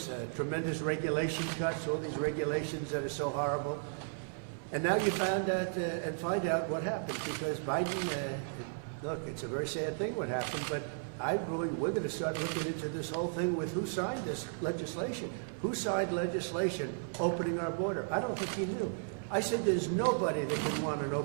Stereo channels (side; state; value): left; silent; 55 dB below the other